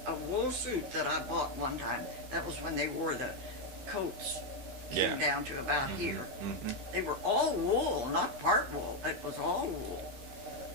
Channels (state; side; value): late; left; 15 ms